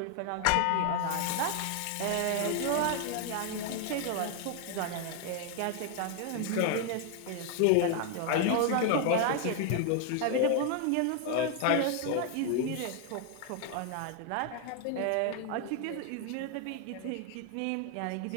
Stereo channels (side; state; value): both; different; correlation 0.00